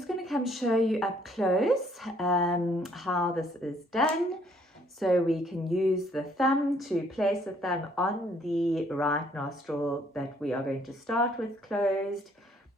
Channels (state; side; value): normal; both; correlation 0.64